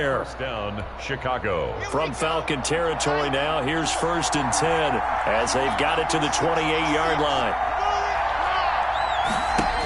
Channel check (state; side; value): identical; both; correlation 1.00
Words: Down, Chicago. From Falcon territory now, here's 1st and 10 as they've got it to the 28-yard line.